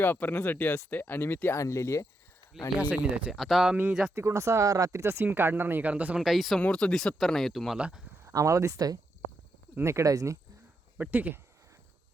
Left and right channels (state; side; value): normal; both; correlation 0.82